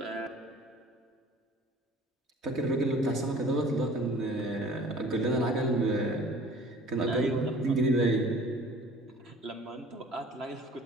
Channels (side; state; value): both; normal; correlation 0.48